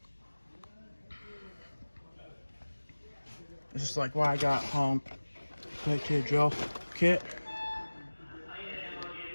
It's just like what I got home. Quick to drill kit.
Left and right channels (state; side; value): inverted; both; correlation -1.00